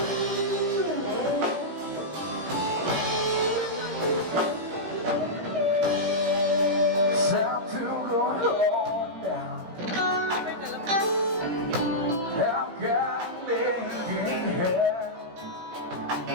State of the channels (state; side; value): late; left; 17 ms